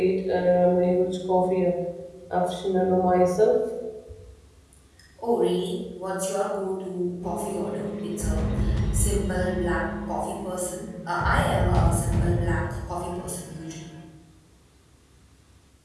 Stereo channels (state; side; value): identical; both; correlation 1.00